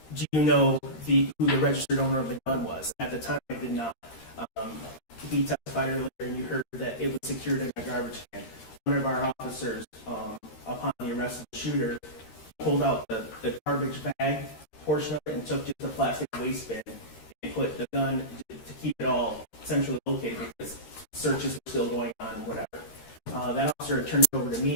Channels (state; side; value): late; right; 13 ms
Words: "Do you know who the registered owner of the gun was?" At the time, I did not. He testified earlier, and you heard that it was secured in a garbage can. One of our officers, upon the arrest of the shooter, pulled out the garbage bag portion of it and took just the plastic waste bin and put the gun to keep it all centrally located because searches were still going on and whatever. That officer turned it over to